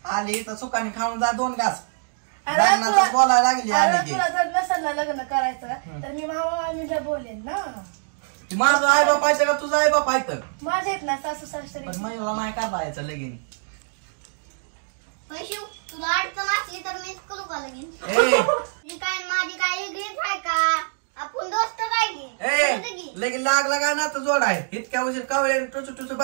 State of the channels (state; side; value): silent; left; digital silence